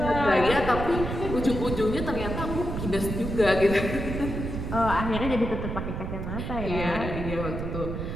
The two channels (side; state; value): right; noise; rumble, 5 dB below the sound